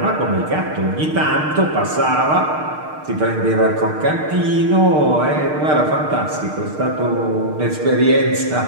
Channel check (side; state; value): left; late; 6.6 ms